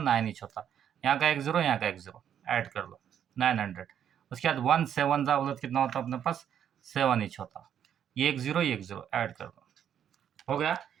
इंच होता। यहाँ का एक 0, यहाँ का एक 0 ऐड कर लो, 900। उसके बाद 1 7 जा बोला तो कितना होता अपने पास, 7 ईच होता। ये एक ज़ीरो ऐड कर दो, हो गया।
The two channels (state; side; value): quieter; left; 9.2 dB